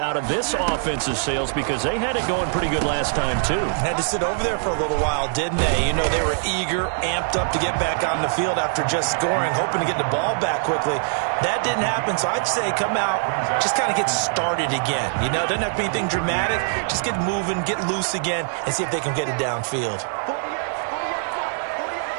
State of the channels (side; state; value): left; silent; 57 dB below the other